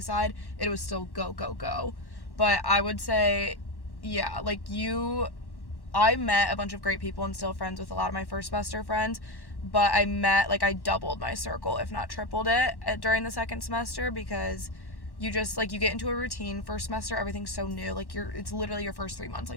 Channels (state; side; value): late; right; 1.1 ms